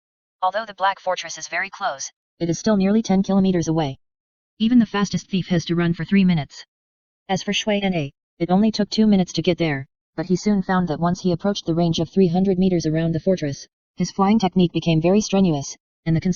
Although the Black Fortress is very close, it is still nearly 10 kilometers away. Even the fastest thief has to run for 3 minutes. As for Shuai, it only took 2 minutes to get there, but he soon found that once he approached the range of 300 meters around the fortress, his flying technique became very strenuous, and the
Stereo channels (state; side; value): identical; both; correlation 1.00